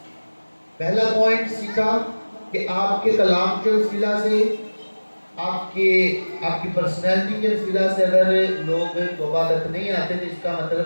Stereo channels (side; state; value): both; inverted; correlation -1.00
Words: پہلا پوائنٹ سیکھا کہ آپ کے کلام کے وسیلہ سے، آپ کی پرسنالٹی کے وسیلہ سے اگر لوگ توبہ تک نہیں آتے تو اس کا